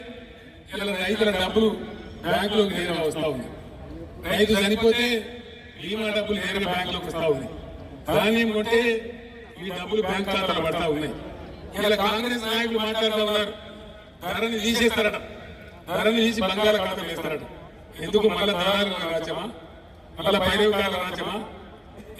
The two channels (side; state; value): both; identical; correlation 1.00